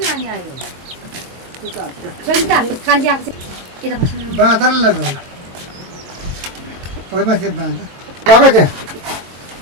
बाँदर लगाउन माथि बाँदर गएको त्यहाँ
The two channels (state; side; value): late; left; 22 ms